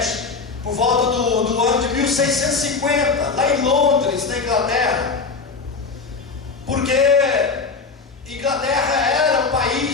por volta do ano de 1650, lá em Londres, na Inglaterra, porque Inglaterra era um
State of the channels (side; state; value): right; quieter; 4.7 dB